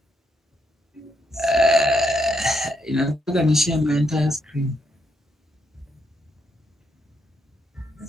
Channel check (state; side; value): normal; both; correlation 0.78